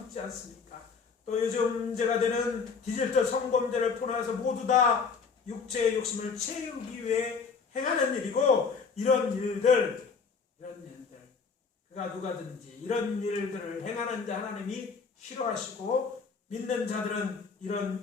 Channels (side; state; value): right; quieter; 5.3 dB